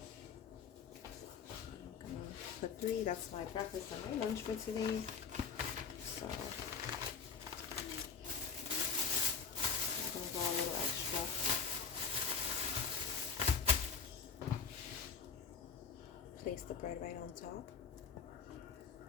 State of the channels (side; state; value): right; quieter; 5.3 dB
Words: For 3, that's my breakfast and my lunch for today. So I'm gonna go a little extra. Place the bread right on top.